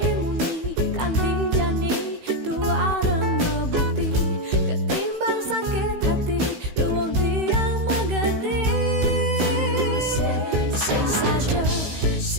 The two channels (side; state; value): left; late; 16 ms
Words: kanti jani, tua remeh bukti. Ketimbang sakit hati, luang tiang magadi.